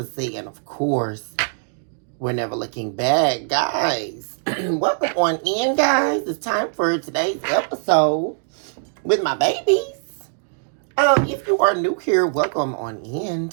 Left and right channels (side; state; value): left; silent; digital silence